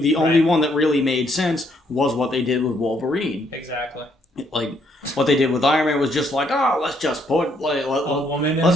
the only one that really made sense was what they did with Wolverine. Exactly. Like what they did with Iron Man was just like, oh, let's just put a woman in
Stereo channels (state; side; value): normal; both; correlation 0.71